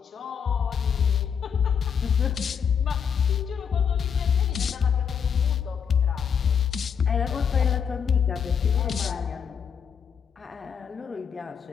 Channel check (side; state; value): right; quieter; 7.2 dB